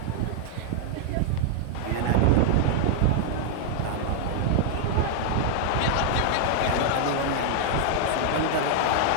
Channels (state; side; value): different; both; correlation -0.01